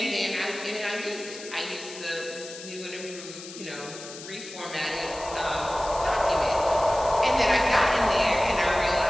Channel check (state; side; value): noise; left; hiss, 13 dB below the sound